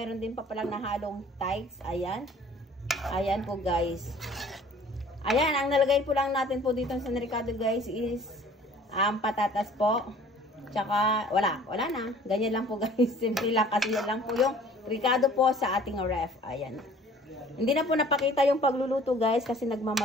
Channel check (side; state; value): both; normal; correlation 0.51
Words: din pa palang nahalong thighs. Ayan. Ayan po guys. Ayan, ang nalagay po lang natin po dito sa Ricado guys is patatas po. Tsaka, wala na. Ganyan lang po guys. Simple lang kasi yan lang po yung Ricado po sa ating ref. Ayan. Hindi na po napakita yung pagluluto guys kasi